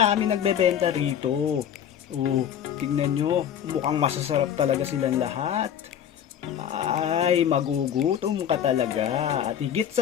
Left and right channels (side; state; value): right; quieter; 9.4 dB